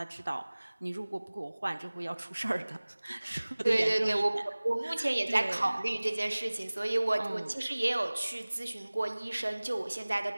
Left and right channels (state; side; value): inverted; both; correlation -1.00